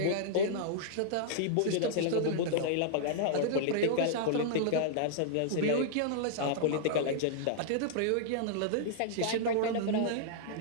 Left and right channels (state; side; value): different; both; correlation -0.01